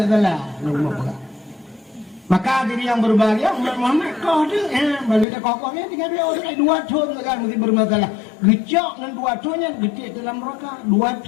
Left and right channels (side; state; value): right; drops out; at 5.2 s